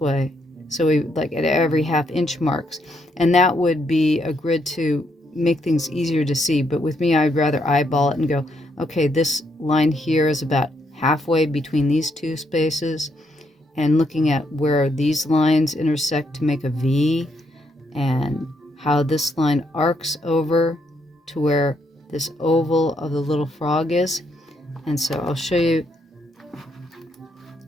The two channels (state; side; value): normal; both; correlation 0.76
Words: So we like at every ½ inch marks. And that would be a grid to make things easier to see. But with me, I'd rather eyeball it and go, okay, this line here is about halfway between these two spaces, and looking at where these lines intersect to make a V, and how this line arcs over to where this oval of the little frog is. And so I'll show you